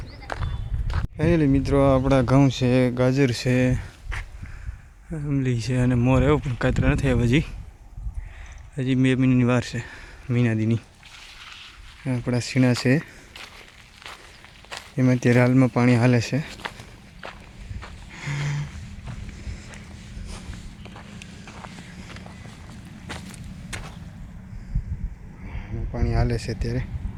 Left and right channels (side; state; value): both; identical; correlation 1.00